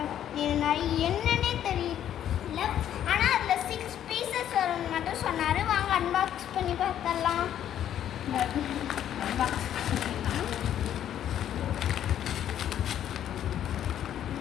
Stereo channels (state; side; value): quieter; right; 10.6 dB